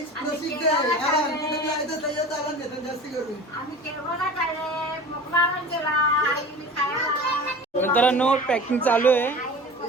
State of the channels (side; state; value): both; normal; correlation 0.37